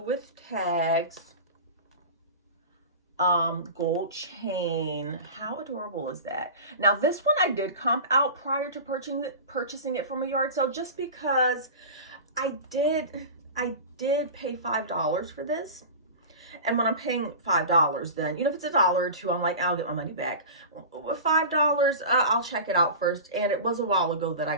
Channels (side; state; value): both; inverted; correlation -0.32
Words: tags. Gold chain. How adorable is that? Now this one I did comp out prior to purchasing it from a yard sale, just because I did pay $5 for this. And when I'm paying $5, then, you know, if it's $1 or $2, I'm like, I'll get my money back. $5, I'll check it out first. And it was a while ago that I